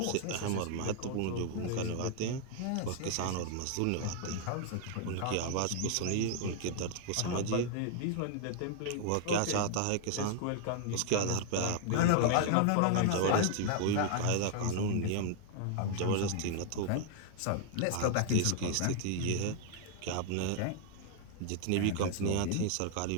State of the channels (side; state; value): both; different; correlation 0.00